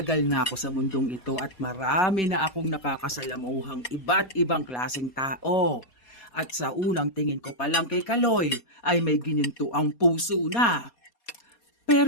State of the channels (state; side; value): late; right; 4.2 ms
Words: na ako sa mundong ito at marami na akong nakakasalamuhang iba't ibang klaseng tao. At sa unang tingin ko pa lang kay Kaloy ay may gininto ang puso na.